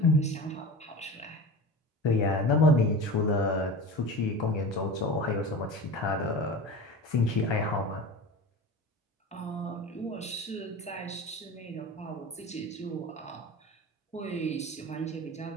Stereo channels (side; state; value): both; normal; correlation 0.31